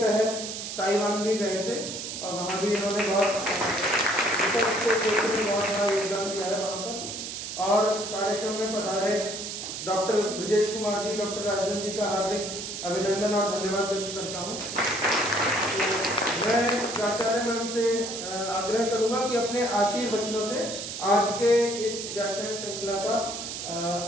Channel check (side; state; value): right; noise; hiss, 7 dB below the sound